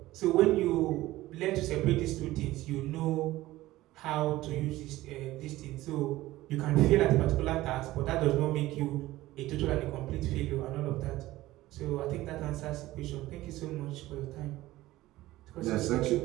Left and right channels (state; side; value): quieter; left; 16.9 dB